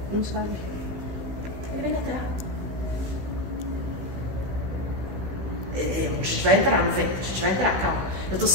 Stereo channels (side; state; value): left; late; 16 ms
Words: Não sabe. Ele vem da terra. A gente vai entrar no vento, a gente vai entrar, calma. Eu estou